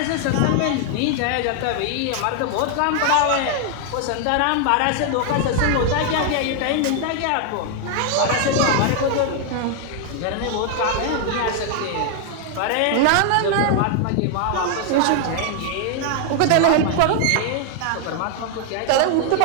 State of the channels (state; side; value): different; both; correlation 0.00